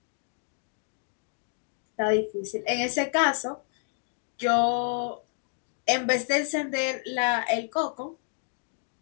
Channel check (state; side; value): silent; right; digital silence